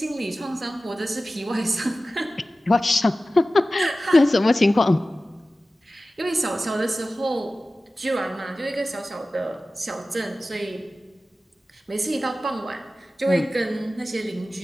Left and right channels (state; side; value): normal; both; correlation 0.96